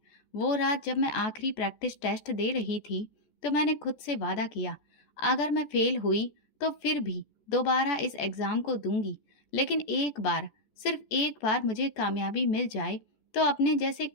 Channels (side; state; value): right; late; 14 ms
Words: वो रात जब मैं आखिरी प्रैक्टिस टेस्ट दे रही थी तो मैंने खुद से वादा किया, अगर मैं फेल हुई तो फिर भी दोबारा इस एग्ज़ाम को दूंगी, लेकिन एक बार, सिर्फ एक बार मुझे कामयाबी मिल जाए तो अपने जैसे